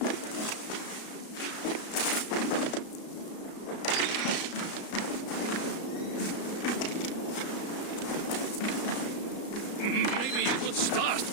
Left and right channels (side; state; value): right; late; 34 ms